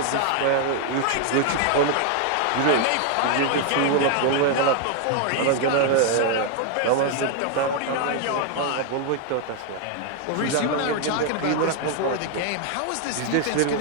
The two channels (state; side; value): different; both; correlation 0.01